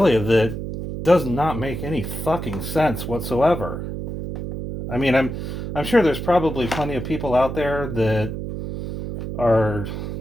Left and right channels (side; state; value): right; noise; hum, 6 dB below the sound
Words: that does not make any fucking sense whatsoever. I mean, I'm sure there's probably plenty of people out there that are